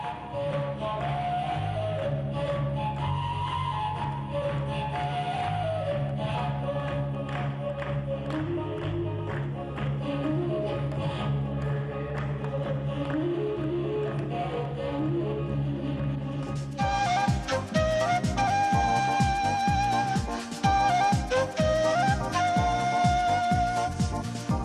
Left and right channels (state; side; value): identical; both; correlation 1.00